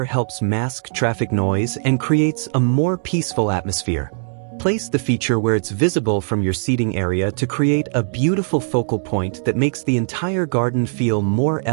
helps mask traffic noise and creates a more peaceful atmosphere. Place the feature where it's visible from your seating area to create a beautiful focal point that makes the entire garden feel more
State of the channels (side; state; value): left; silent; digital silence